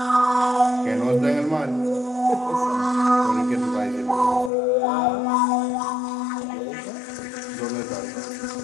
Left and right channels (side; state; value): right; drops out; at 4.5 s